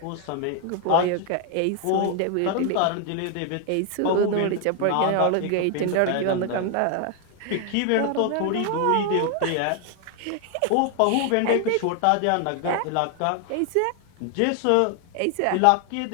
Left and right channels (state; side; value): different; both; correlation 0.00